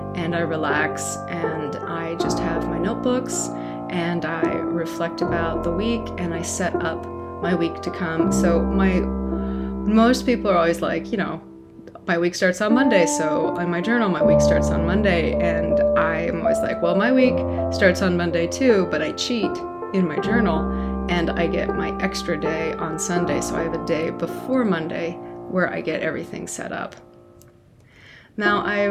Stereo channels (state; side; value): identical; both; correlation 1.00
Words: and I relax and I just have my notebooks and I reflect about the week and I set up my week to come. So most people are always like, you know, my week starts on Monday, so in my journal my week starts on Monday, and I'm always like, well, my week starts on Monday too, but I cheat in my journal and I get my extra day on Sunday, so I have a day before Monday where I get everything set up. Now,